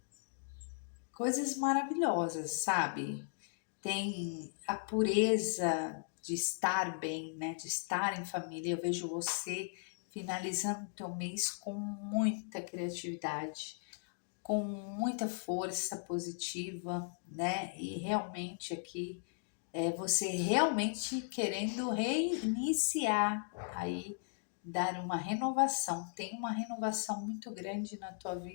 coisas maravilhosas, sabe? Tem a pureza de estar bem, né? De estar em família. Eu vejo você finalizando o teu mês com muita criatividade, com muita força positiva, né? E realmente aqui você realmente querendo reiniciar aí, dar uma renovação. Tem uma renovação muito grande na tua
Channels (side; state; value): right; silent; digital silence